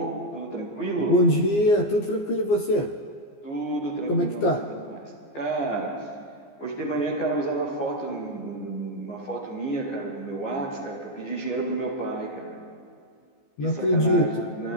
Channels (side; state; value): right; late; 15 ms